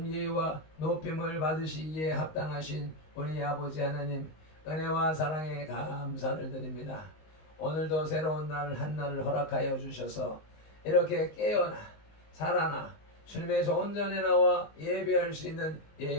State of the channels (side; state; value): right; late; 19 ms